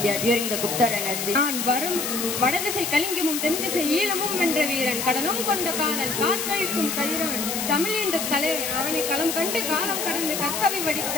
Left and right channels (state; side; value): noise; left; hiss, 2 dB below the sound